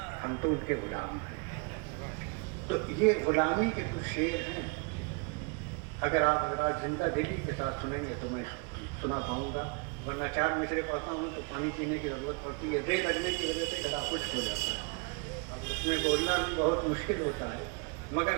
ہم تو ان کے غلام ہیں۔ تو یہ غلامی کے کچھ شعر ہیں، اگر آپ زندہ دلی کے ساتھ سنیں گے تو میں سنا پاؤں گا، ورنہ 4 مصرے پڑھتا ہوں تو پانی پینے کی ضرورت پڑتی ہے، دے لگنے کی وجہ سے گلا خشک ہو جاتا ہے، اب اس میں بولنا بھی بہت مشکل ہوتا ہے، مگر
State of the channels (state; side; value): quieter; left; 32.7 dB